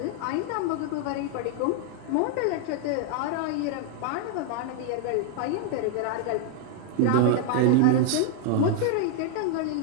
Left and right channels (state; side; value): different; both; correlation 0.00